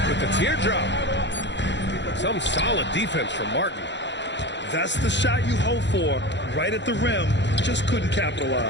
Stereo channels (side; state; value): right; late; 0.52 ms